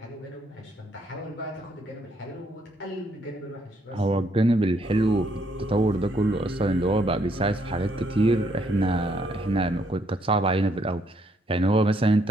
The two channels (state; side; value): normal; both; correlation 0.71